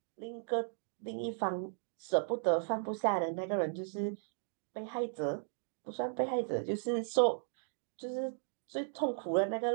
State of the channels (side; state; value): left; silent; digital silence